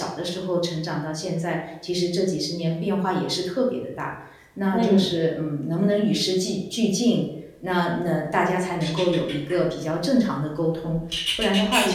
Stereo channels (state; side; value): identical; both; correlation 1.00